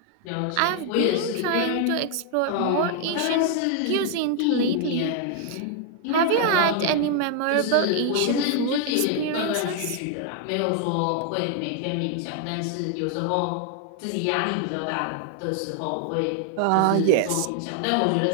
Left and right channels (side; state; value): both; different; correlation 0.00